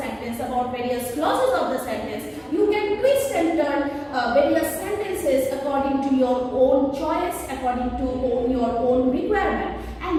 about various clauses of the sentence, you can twist and turn various sentences according to your own choice, according to your own requirement,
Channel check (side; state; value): both; identical; correlation 1.00